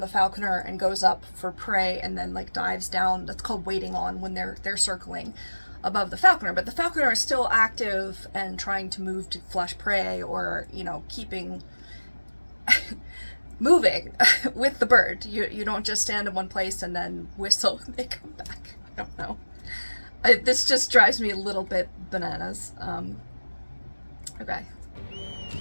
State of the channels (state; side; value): inverted; both; correlation -1.00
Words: the falconer and goes up for prey and then like dives down, that's called waiting on when they're circling above the falconer. But the falconer is still active and trying to move to flush prey or, keeping moving with the bird. You don't just stand in one place and then whistle when they come back. I don't know. This just drives me a little bit bananas. Okay.